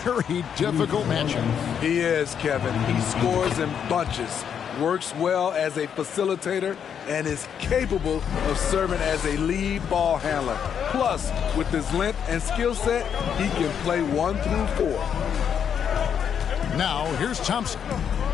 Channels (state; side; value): quieter; right; 8.0 dB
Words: very difficult matchup. He is, Kevin. He scores in bunches, works well as a facilitator, and is capable of serving as a lead ball handler. Plus, with his length and skill set, he can play 1 through 4. Now, here's Thompson.